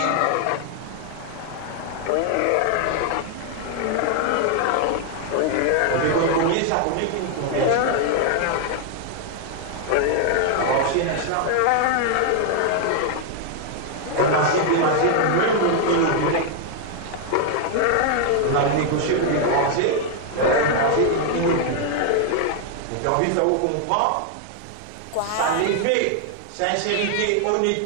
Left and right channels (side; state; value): both; different; correlation 0.00